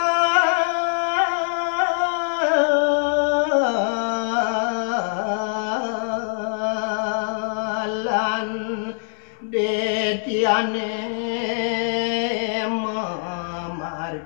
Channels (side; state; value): right; silent; digital silence